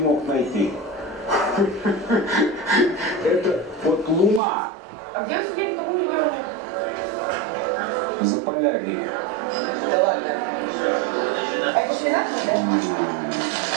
мог найти. Это вот Луна. А где вы сидели в каком регионе? Заполярье. Да ладно. А это шпинат, да?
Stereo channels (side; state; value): left; drops out; at 4.4 s